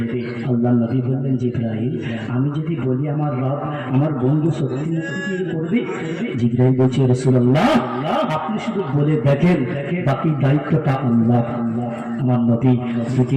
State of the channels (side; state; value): both; identical; correlation 1.00